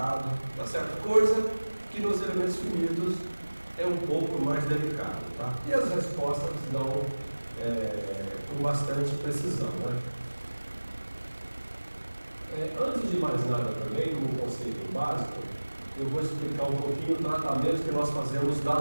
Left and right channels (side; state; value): both; inverted; correlation -1.00